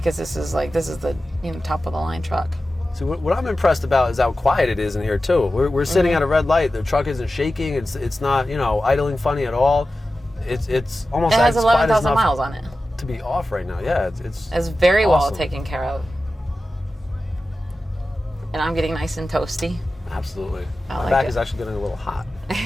this is the top of the line truck. So what I'm impressed about is how quiet it is in here too. We're sitting at a red light. The truck isn't shaking. It's not idling funny at all. It's almost. It has 11,000 miles on it. To be off right now, yeah, it's very awesome. well taken care of. And I'm getting nice and toasty. Absolutely. My back is actually getting a little hot.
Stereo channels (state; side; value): normal; both; correlation 0.94